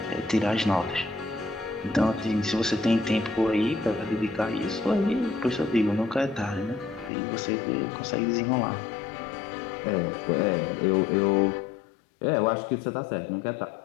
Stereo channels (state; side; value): drops out; right; at 7.1 s